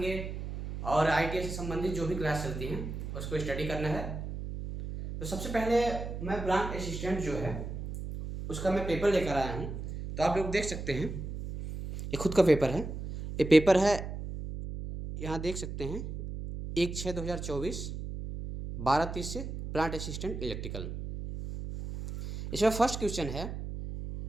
और आईटीआई से संबंधित जो भी क्लास चलती हैं उसको स्टडी करना है। तो सबसे पहले मैं ब्रांच असिस्टेंट जो है उसका मैं पेपर लेकर आया हूँ। तो आप लोग देख सकते हैं, ये खुद का पेपर है। ये पेपर है, यहाँ देख सकते हैं, 1/6/2024 12:30 से प्लांट असिस्टेंट इलेक्ट्रिकल। इसमें फर्स्ट क्वेश्चन है,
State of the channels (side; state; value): right; noise; hum, 7 dB below the sound